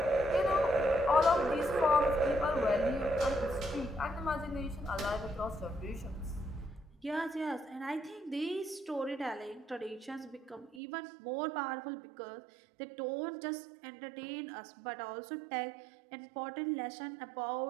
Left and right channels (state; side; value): drops out; left; at 10.8 s